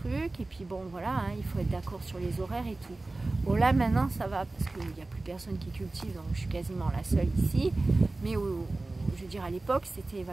et puis bon voilà, hein, il faut être d'accord sur les horaires et tout. Bon là maintenant ça va, parce qu'il n'y a plus personne qui cultive, donc je suis quasiment la seule ici. Mais je veux dire à l'époque c'était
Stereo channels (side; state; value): left; quieter; 3.1 dB